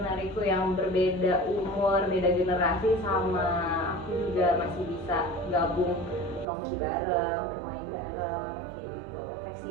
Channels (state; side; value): drops out; left; at 6.5 s